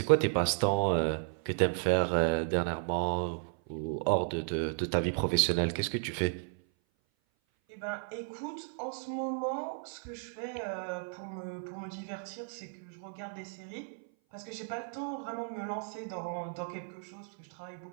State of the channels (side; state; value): left; silent; 55 dB below the other